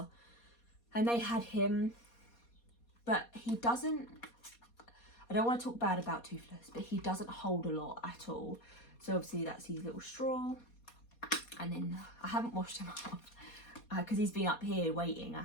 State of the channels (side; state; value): right; late; 4.2 ms